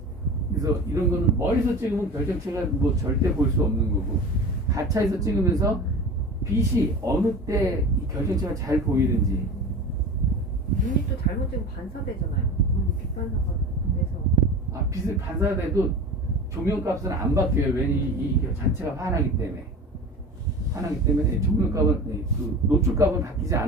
그래서 이런 거는 멀리서 찍으면 결정체가 뭐 절대 볼 수 없는 거고 가차에서 찍으면서 빛이 어느 때 이 결정체가 잘 보이는지. 눈이 또 잘못 찍으면 반사되잖아요. 빛 반사가 돼서. 빛을 반사돼도 조명값은 안 바뀌어요. 왜냐 이 자체가 환하기 때문에 조명값은 그 노출값은 바뀌지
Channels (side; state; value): both; normal; correlation 0.34